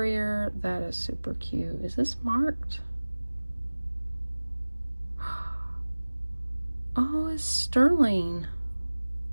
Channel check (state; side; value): inverted; both; correlation -1.00